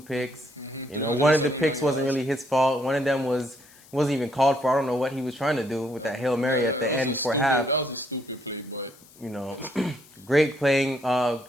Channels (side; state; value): left; noise; hiss, 25 dB below the sound